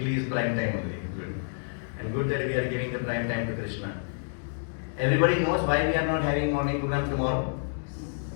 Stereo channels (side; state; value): right; silent; digital silence